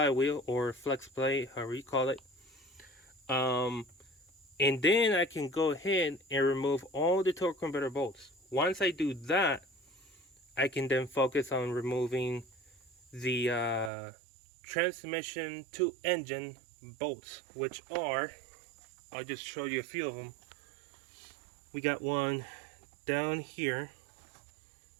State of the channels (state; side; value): drops out; left; at 13.9 s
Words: or flex plate, however you call it. And then I can go ahead and remove all the torque converter bolts. Once I do that, I can then focus on removing the transmission to engine bolts, which are, I'll just show you a few of them. We got one down here,